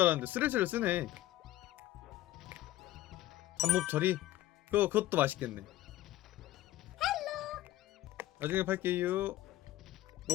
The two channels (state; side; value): quieter; right; 15.1 dB